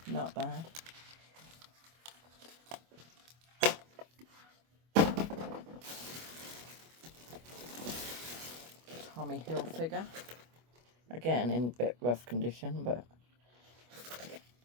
not bad. Tommy Hilfiger. Again, in a bit rough condition, but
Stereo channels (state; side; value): late; left; 25 ms